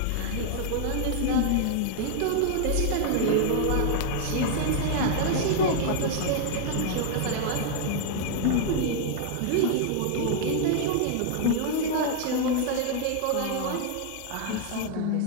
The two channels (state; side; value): different; both; correlation 0.00